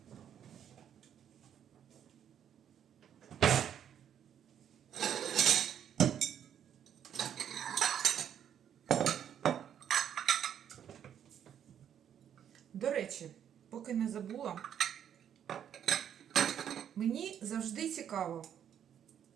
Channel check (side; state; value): left; quieter; 9.3 dB